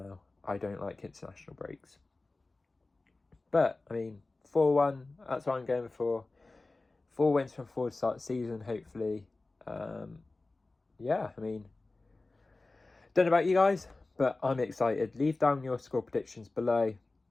I don't like international breaks. But, I mean, 4-1, that's what I'm going for. 4 wins from 4 to start the season, hopefully. Yeah, I mean, don't know about you guys, but I'm excited. Leave down your score predictions below.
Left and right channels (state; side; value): quieter; right; 3.3 dB